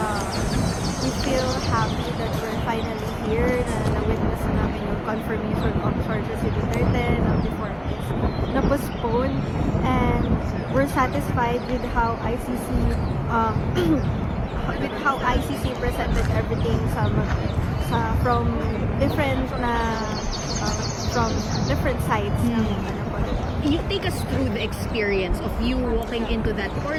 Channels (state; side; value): identical; both; correlation 1.00